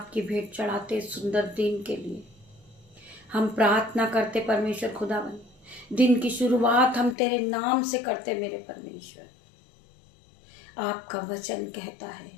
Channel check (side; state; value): right; drops out; at 7.2 s